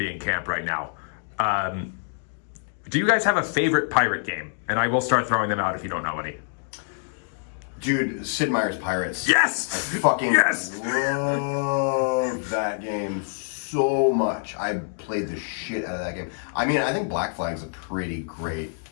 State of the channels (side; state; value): right; silent; digital silence